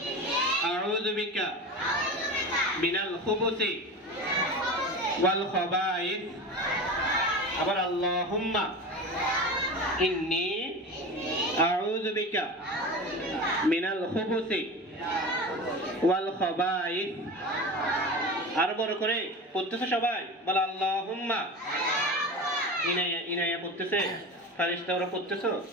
আউযু বিকা মিনাল খুবুসি ওয়াল খাবাইস। আবার আল্লাহুম্মা ইন্নী আউযু বিকা মিনাল খুবুসি ওয়াল খাবাইস। আরো বড় করে পড়তেছে সবাই, বলো আল্লাহুম্মা। ইনায়া ইনায়া পড়তেছে, ফারিস্তা ওরা পড়তেছো,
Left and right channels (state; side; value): normal; both; correlation 0.29